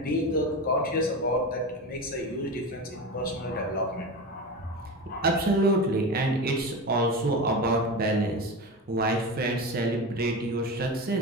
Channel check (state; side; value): normal; both; correlation 0.24